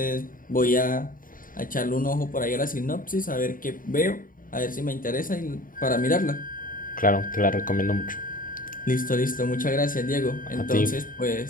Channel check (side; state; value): right; late; 0.40 ms